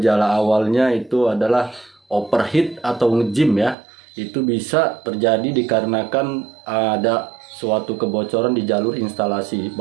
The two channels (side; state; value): left; drops out; at 3.8 s